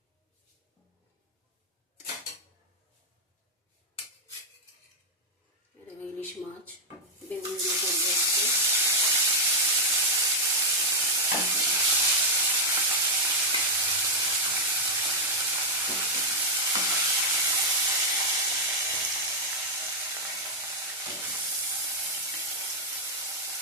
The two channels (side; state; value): both; normal; correlation -0.02